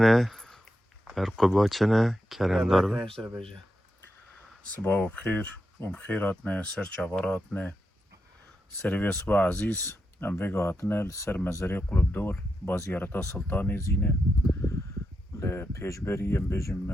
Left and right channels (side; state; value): both; normal; correlation 0.86